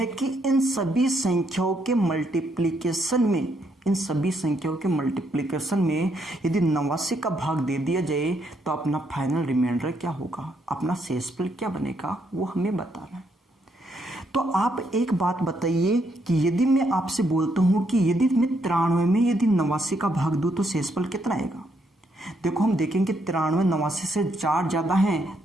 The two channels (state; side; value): normal; both; correlation 0.75